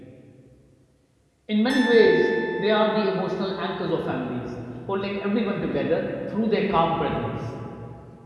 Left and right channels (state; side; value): identical; both; correlation 1.00